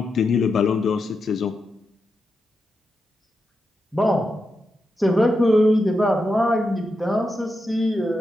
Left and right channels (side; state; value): both; normal; correlation 0.87